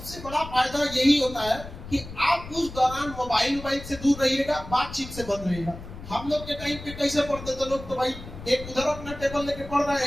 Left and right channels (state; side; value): noise; left; rumble, 13 dB below the sound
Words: बड़ा फायदा यही होता है कि आप उस दौरान मोबाइल से दूर रहिएगा, बातचीत से बंद रहिएगा। हम लोग के टाइम पे कैसे पढ़ते थे लोग, तो भाई एक उधर अपना टेबल लेके पढ़ रहा है,